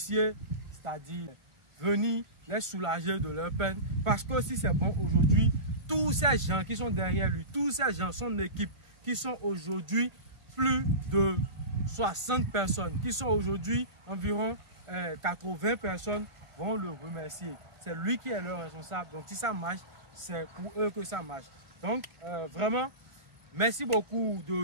c'est-à-dire venir les soulager de leur peine. Parce que si c'est bon aujourd'hui, tous ces gens qui sont derrière lui, tous ces gens, son équipe, qui sont aujourd'hui plus de 60 personnes, qui sont aujourd'hui environ 80 personnes, vont le remercier. C'est lui qui est leur responsable. Donc si ça marche, c'est pour eux que ça marche. Donc vraiment, merci beaucoup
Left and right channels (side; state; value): left; late; 1.5 ms